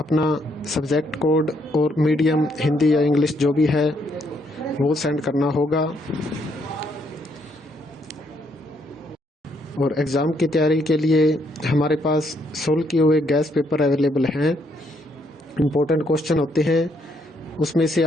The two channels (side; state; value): both; normal; correlation 0.72